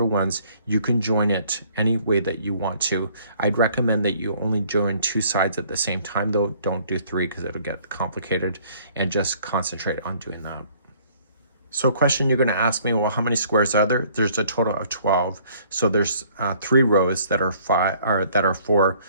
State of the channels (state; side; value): inverted; both; correlation -0.59